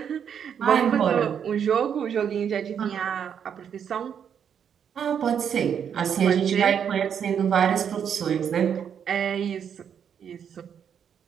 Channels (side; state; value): left; quieter; 8.0 dB